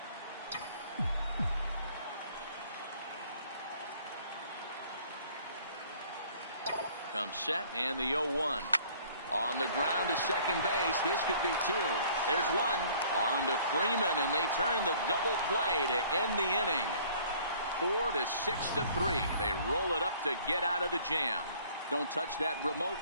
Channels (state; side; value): inverted; both; correlation -0.55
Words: Comes set, and the 0-1. On the ground to second base. This could be 2. There's 1. On to Freeman, and they turn the double play to end the inning. 4-6-3. They roll it up to get out of the jam. Don't touch that remote.